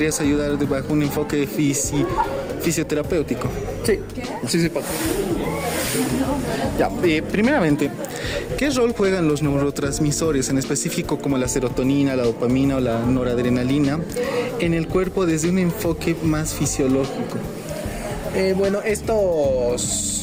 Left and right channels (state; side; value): identical; both; correlation 1.00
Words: ayudar bajo un enfoque fisioterapéutico. Sí, puedo. Ya, primeramente, ¿qué rol juegan los neurotransmisores, en específico como la serotonina, la dopamina o la noradrenalina, en el cuerpo desde un enfoque más fisiológico?